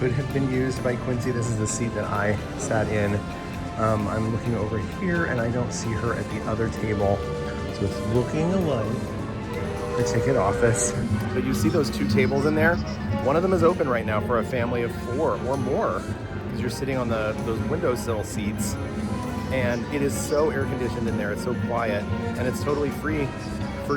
have been used by Quincy. This is the seat that I sat in. I'm looking over here and I don't see her at the other table. So it's looking like the ticket office. But you see those two tables in there? One of them is open right now for a family of 4 or more because you're sitting on those windowsill seats, and it is so air conditioned in there. It's so quiet, and it's totally free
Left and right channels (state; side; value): identical; both; correlation 1.00